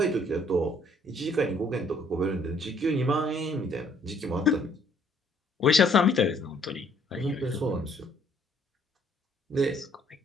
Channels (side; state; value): both; normal; correlation 0.63